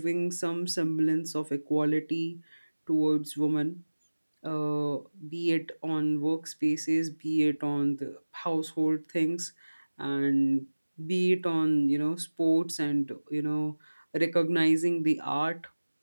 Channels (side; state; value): both; inverted; correlation -1.00